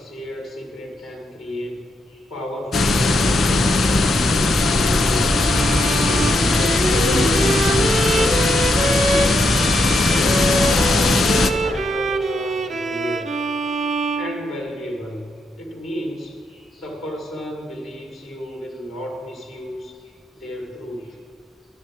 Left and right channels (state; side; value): normal; both; correlation 0.80